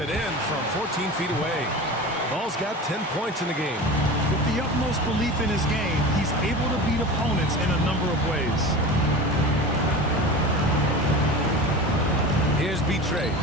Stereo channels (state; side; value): normal; both; correlation 0.32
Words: in from 14 feet away. Ball's got 10 points in the game. With the utmost belief in his game, he's able to beat opponents in a number of ways. Here's Betray.